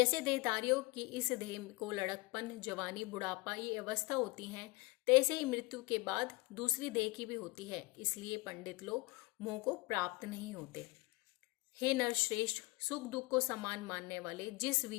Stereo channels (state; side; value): quieter; right; 24.3 dB